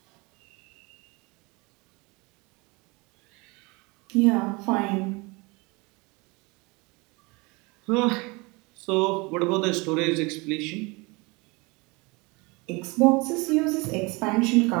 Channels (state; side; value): quieter; left; 26.6 dB